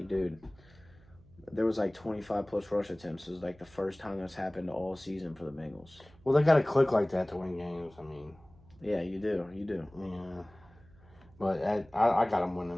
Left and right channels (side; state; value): right; noise; hum, 25 dB below the sound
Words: dude, there was like 25 plus rush attempts. It was like the first time that's happened all season for the Bengals. Well, they got to click like that to win games. I mean, yeah, you do. Yeah, but I got them